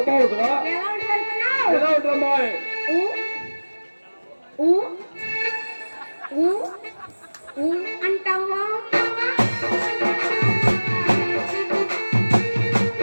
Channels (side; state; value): both; inverted; correlation -1.00